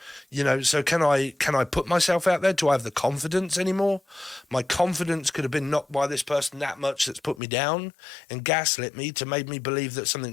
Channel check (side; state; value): right; drops out; at 7.4 s